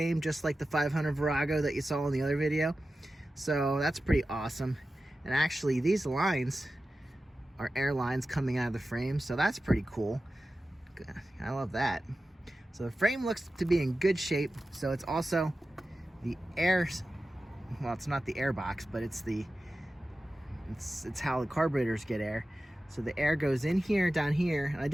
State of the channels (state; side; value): normal; both; correlation 0.94